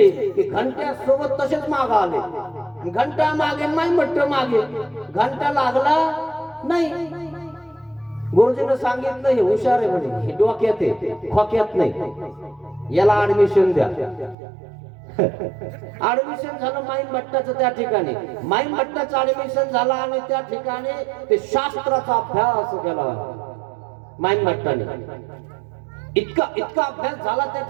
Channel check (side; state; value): left; drops out; at 14.4 s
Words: की घंट्या सोबत तसेच माग आले. घंटा मागे माईन भट्ट मागे, घंटा लागला नाही. गुरुजीनं सांगितलं हे हुशार आहे म्हणे, हे डोक्यात आहे खोक्यात नाही, याला ऍडमिशन द्या. ऍडमिशन झालं माईन भट्टाचं त्या ठिकाणी. माईन भट्टाचं ऍडमिशन झालं आणि त्या ठिकाणी ते शास्त्राचा अभ्यास केला माईन भट्टाने. इतका अभ्यास झाला त्या